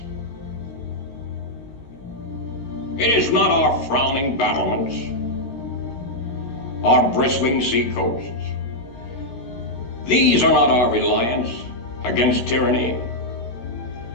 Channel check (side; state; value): right; late; 16 ms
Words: It is not our frowning battlements, our bristling seacoasts. These are not our reliance against tyranny.